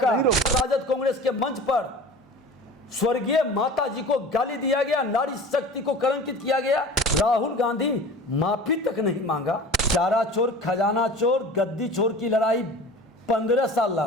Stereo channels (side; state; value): both; normal; correlation 0.39